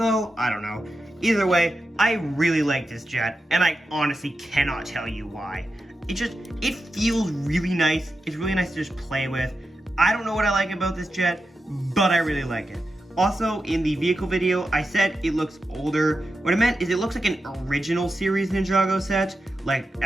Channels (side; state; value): both; normal; correlation 0.90